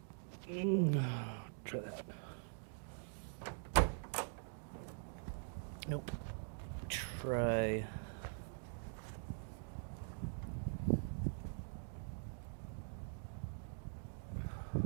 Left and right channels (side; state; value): left; silent; digital silence